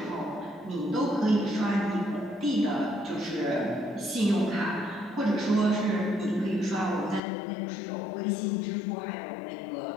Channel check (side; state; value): right; drops out; at 7.2 s